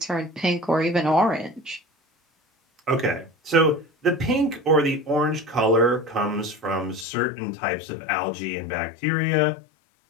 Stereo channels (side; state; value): right; drops out; at 7.1 s